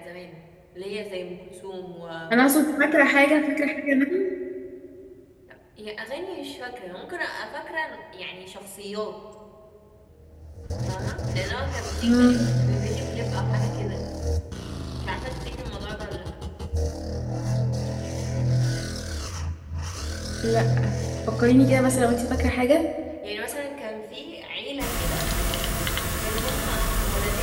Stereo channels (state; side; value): identical; both; correlation 1.00